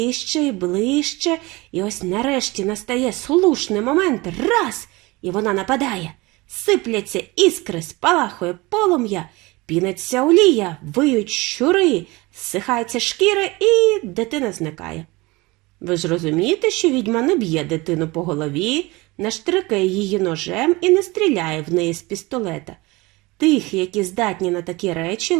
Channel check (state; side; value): quieter; left; 22.7 dB